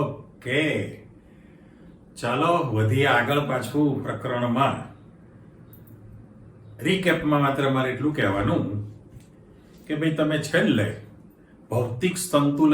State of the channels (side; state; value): both; identical; correlation 1.00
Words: ચાલો વધીએ આગળ પાછું પ્રકરણમાં. રીકેપમાં માત્ર મારે એટલું કહેવાનું કે ભાઈ તમે છેલ્લે ભૌતિક